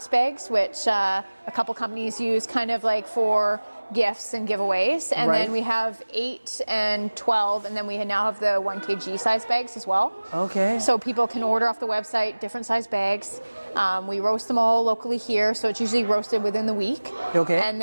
bags, which a couple companies use kind of like for gifts and giveaways, and then we have 8 and 12, and then we now have the 1 kg size bags as well. Okay. So people can order off the website different size bags. We roast them all locally here, so it's usually roasted within the week. Okay. And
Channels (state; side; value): inverted; both; correlation -1.00